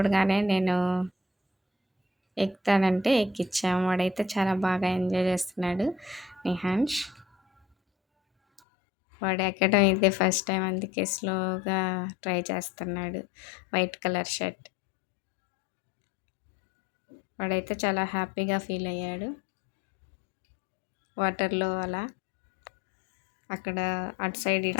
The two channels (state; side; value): drops out; right; at 8.6 s